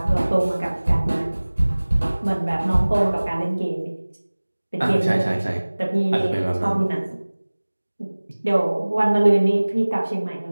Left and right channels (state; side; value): inverted; both; correlation -1.00